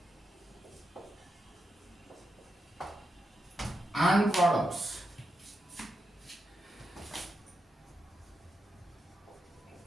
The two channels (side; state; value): both; normal; correlation 0.86